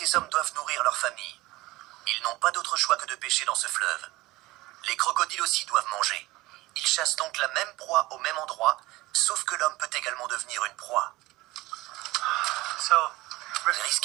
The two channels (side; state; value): left; quieter; 19.4 dB